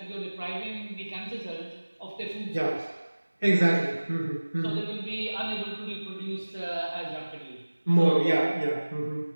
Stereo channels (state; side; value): inverted; both; correlation -1.00